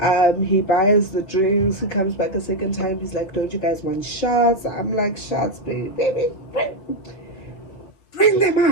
he buys the drinks. He comes back a second time. He's like, don't you guys want shots? I'm like, shots, baby, bring them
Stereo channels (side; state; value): right; late; 5.1 ms